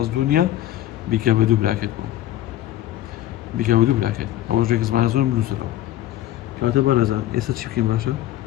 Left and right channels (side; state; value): right; quieter; 13.3 dB